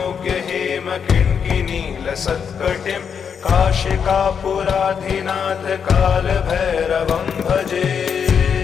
हेमकिङ्किनीलसत्कटिं काशिकापुराधिनाथ कालभैरवं भजे।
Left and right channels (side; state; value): right; quieter; 7.0 dB